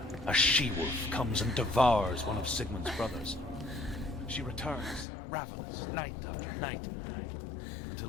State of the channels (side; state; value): right; drops out; at 5.1 s